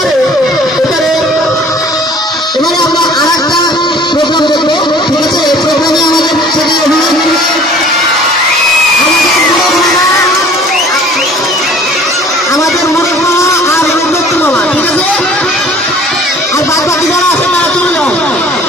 এবারে এবারে আমরা আর একটা প্রোগ্রাম দেখবো, ঠিক আছে? এই প্রোগ্রামে আমাদের সেটি অভিনয় করবে আমাদের মুরুখ মামা আর রূপদত্ত মামা, ঠিক আছে? আর বাদ বাকি যারা আছে তারা চলে যাও।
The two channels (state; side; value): normal; both; correlation 0.51